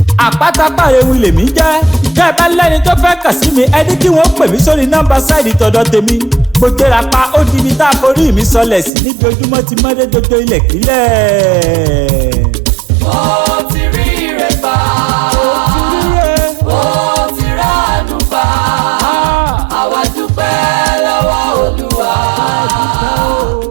Àpáta pàrẹ̀wù lèmi jẹ́. Bẹ́ẹ̀ bá lẹ́ni tó fẹ́ kàn sí mi, ẹni kí wọ́n pè mí sórí nọ́mbà sáìdì tọ̀dọ̀ tèmi. Mo gbéra pa ó di ibi tá a forí mi sọlẹ̀ sí níbi ojúmọ́ ti mọ́dé dodo ilẹ̀ kílẹ̀. Ó ti rí ire gbà, ó ti ránu gbà. Àwa dúpẹ́ lọ́wọ́ Olúwa.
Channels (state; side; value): drops out; left; at 8.9 s